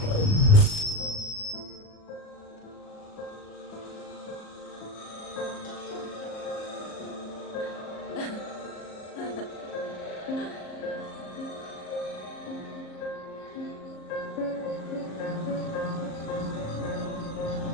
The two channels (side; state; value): right; late; 38 ms